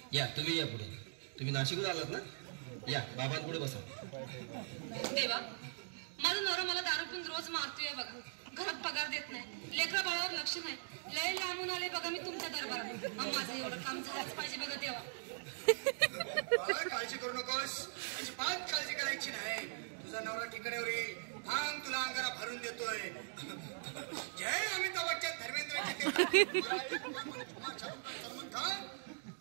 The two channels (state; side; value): silent; left; digital silence